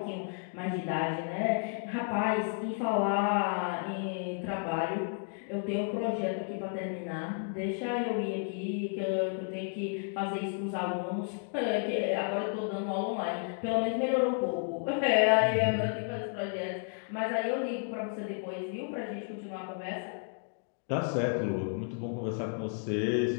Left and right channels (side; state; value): right; silent; 56 dB below the other